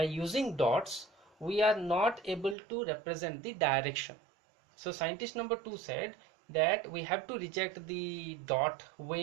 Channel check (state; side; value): drops out; left; at 2.6 s